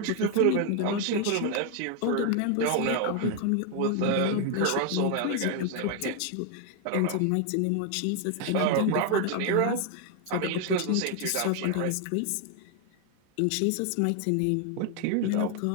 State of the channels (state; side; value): different; both; correlation 0.01